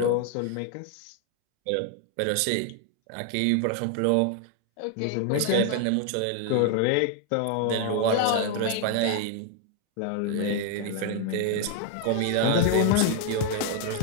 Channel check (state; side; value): different; both; correlation 0.00